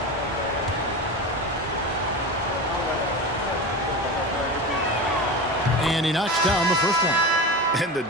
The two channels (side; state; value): both; normal; correlation 0.25